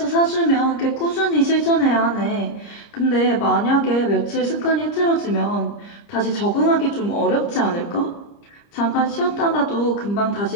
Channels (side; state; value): right; late; 30 ms